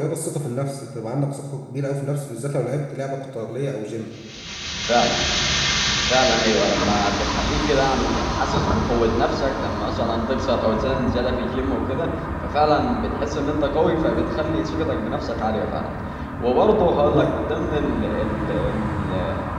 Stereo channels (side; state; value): both; identical; correlation 1.00